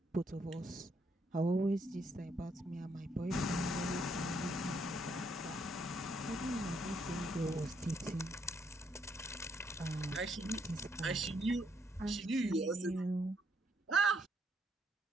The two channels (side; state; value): both; normal; correlation 0.73